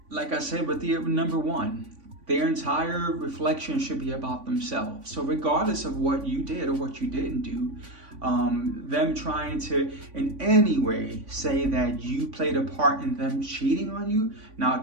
like I said with the number 1, their entire reflection should be about themselves. So regardless of what you did or what you didn't do, them trying to in any way say that you played a part in them cheating on you, now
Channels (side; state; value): left; late; 3.5 ms